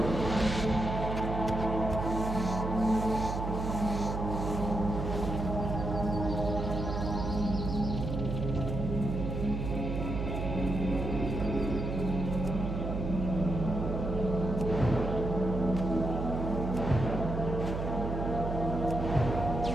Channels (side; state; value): right; noise; hum, 3 dB below the sound